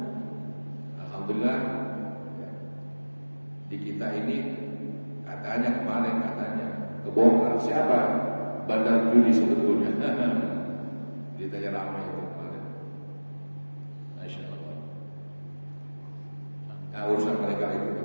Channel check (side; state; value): both; inverted; correlation -1.00